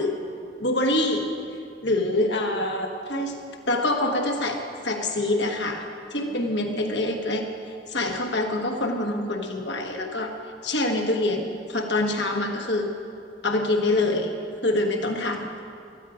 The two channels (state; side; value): normal; both; correlation 0.24